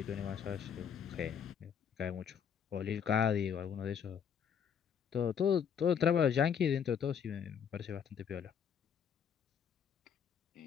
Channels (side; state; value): right; quieter; 7.6 dB